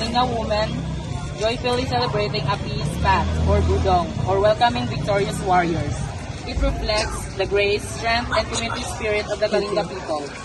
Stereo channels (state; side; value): identical; both; correlation 1.00